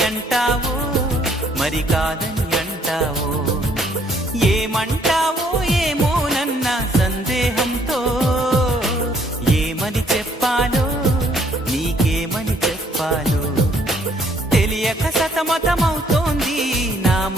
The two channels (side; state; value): both; normal; correlation 0.65